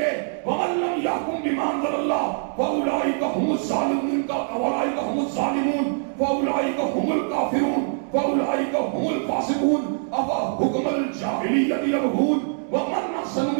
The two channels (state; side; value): silent; left; digital silence